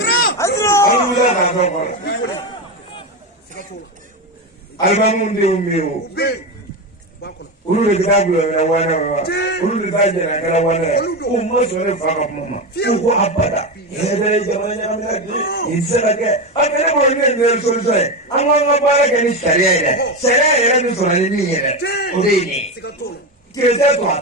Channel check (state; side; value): normal; both; correlation 0.16